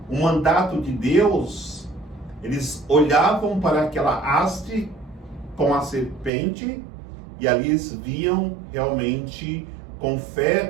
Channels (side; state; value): left; drops out; at 6.3 s